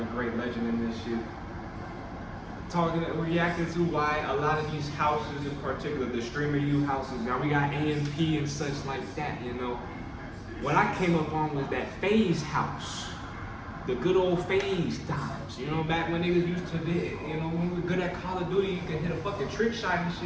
great legend in this shit. Reacting to why a lot of these houses, in particular the Streamer U houses, now we got AMP and such like that. What I came up on was that FaZe house. The good old FaZe times, back when niggas used to be, when we were good at Call of Duty, you could hit a fucking trick shot and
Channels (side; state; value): both; identical; correlation 1.00